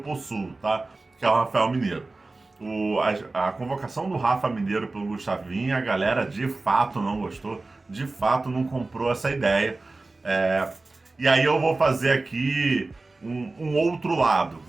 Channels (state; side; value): quieter; left; 3.3 dB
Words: tá? Que é o Rafael Mineiro. A convocação do Rafa Mineiro pelo Gustavinho, a galera de fato não gostou, de fato não comprou essa ideia. E aí eu vou fazer aqui um outro lado,